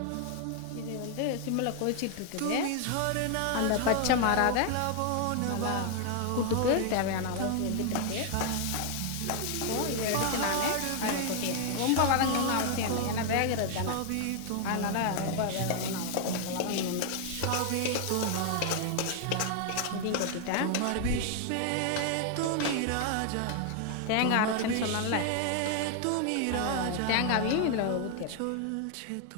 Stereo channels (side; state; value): both; different; correlation 0.00